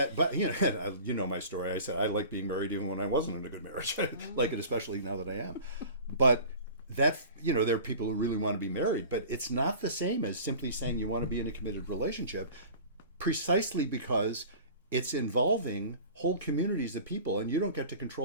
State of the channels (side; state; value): both; inverted; correlation -0.40